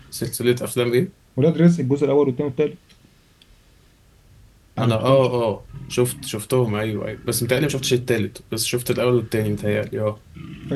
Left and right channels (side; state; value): both; identical; correlation 1.00